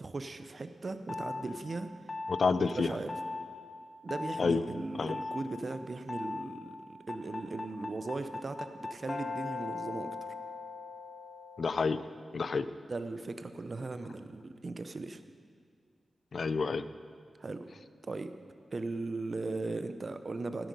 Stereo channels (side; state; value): both; normal; correlation 0.90